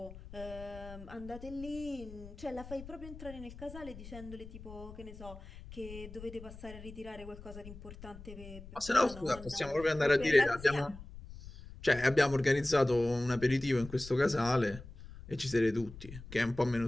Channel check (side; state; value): left; noise; rumble, 15 dB below the sound